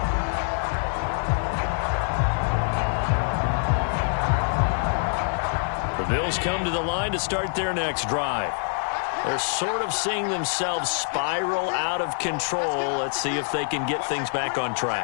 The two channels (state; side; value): silent; right; digital silence